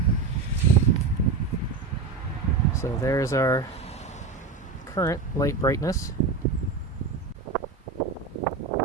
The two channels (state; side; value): quieter; left; 4.4 dB